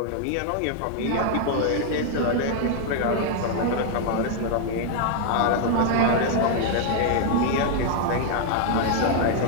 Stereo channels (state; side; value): different; both; correlation 0.00